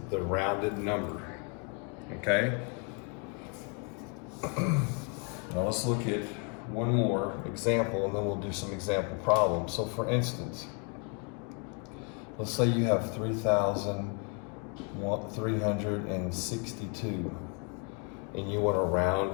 the rounded number. Okay? Now let's look at one more example, and then we'll do some example problems. So for instance, let's say you have 3,362. and you want to round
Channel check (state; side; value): quieter; right; 37.0 dB